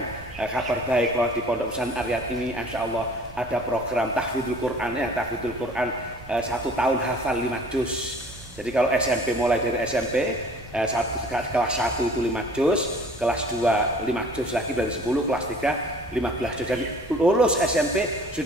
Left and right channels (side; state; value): right; noise; hum, 19 dB below the sound